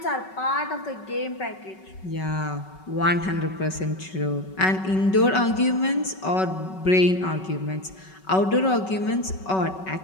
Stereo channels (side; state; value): right; late; 5.3 ms